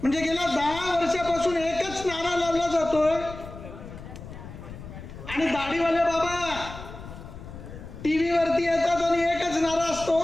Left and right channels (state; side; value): noise; left; rumble, 13 dB below the sound